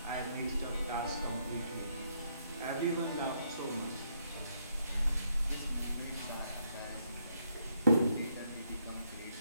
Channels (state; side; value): inverted; both; correlation -0.74